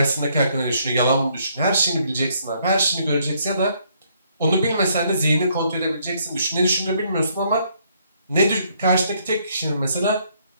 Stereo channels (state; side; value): inverted; both; correlation -0.69